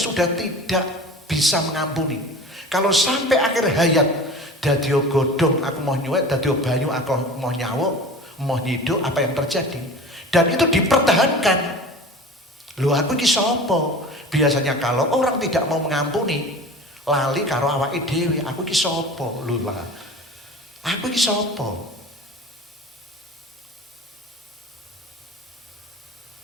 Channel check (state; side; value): normal; both; correlation 0.37